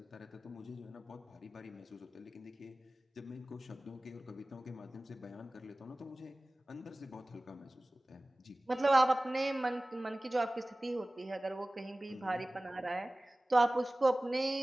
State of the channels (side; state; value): both; normal; correlation 0.98